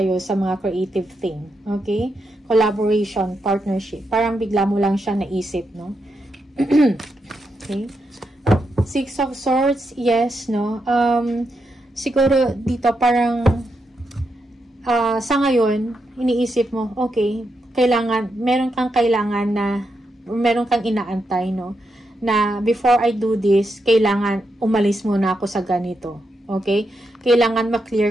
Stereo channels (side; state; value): both; normal; correlation 0.83